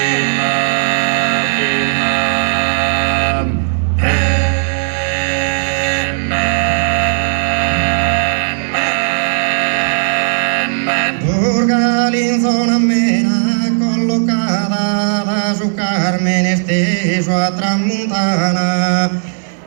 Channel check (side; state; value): left; silent; digital silence